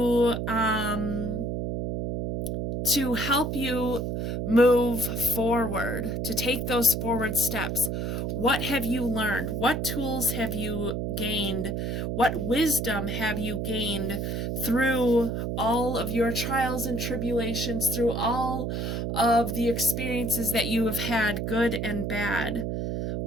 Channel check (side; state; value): right; noise; hum, 2 dB below the sound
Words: help you move forward, to take those forward steps. What have you learned? What tools have you gained? What wisdom have you gained through all of your trials and tribulations, through all of the experiences that you have had, good and bad?